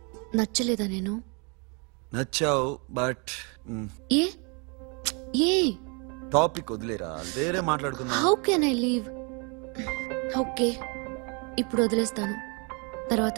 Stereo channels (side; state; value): left; quieter; 33.6 dB